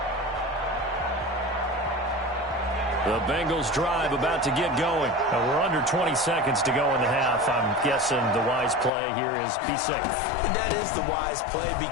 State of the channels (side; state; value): right; drops out; at 8.9 s